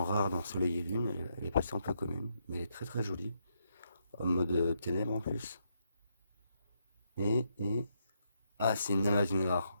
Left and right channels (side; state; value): both; inverted; correlation -0.78